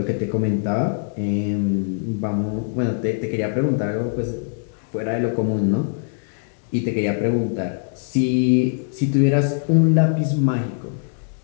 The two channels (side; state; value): right; silent; digital silence